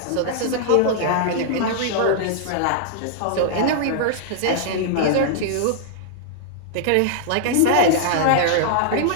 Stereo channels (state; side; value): different; both; correlation -0.01